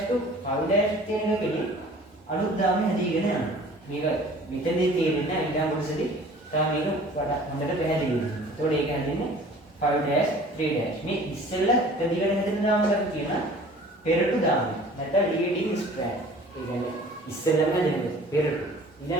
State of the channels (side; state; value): both; normal; correlation 0.48